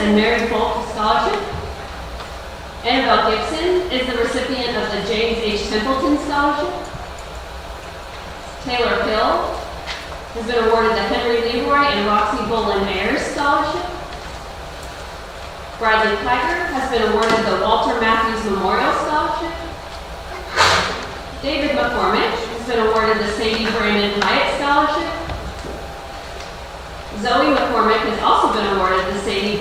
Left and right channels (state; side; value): identical; both; correlation 1.00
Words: Mary Folk Scholarship. Annabelle Gibson is the recipient of the James H. Templeton Scholarship. Taylor Hill has been awarded the Henry Leroy and Roxy Bolin Ayers Scholarship. Bradley Tiger has been awarded the Walter Matthews Memorial Scholarship. David McCormick has been awarded the Sadie Brandon Hyatt Scholarship. Zoe McCormick has also been awarded the Sadie